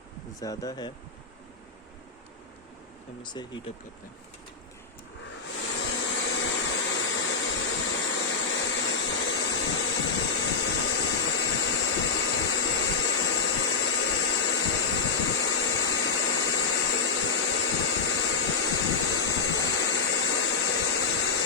ज़्यादा है। हम इसे हीट अप करते हैं।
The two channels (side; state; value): right; quieter; 5.1 dB